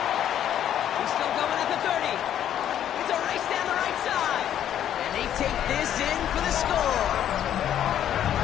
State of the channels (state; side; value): quieter; right; 10.5 dB